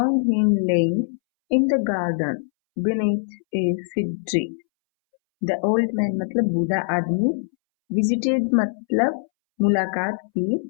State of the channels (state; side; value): silent; right; 64 dB below the other